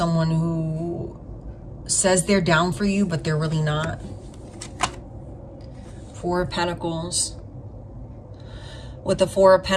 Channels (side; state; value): both; identical; correlation 1.00